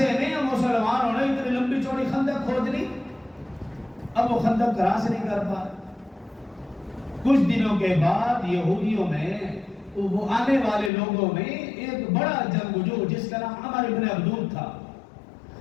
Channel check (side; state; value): right; drops out; at 10.9 s